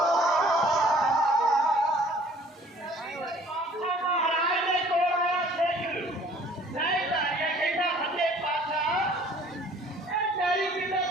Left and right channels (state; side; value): normal; both; correlation 0.54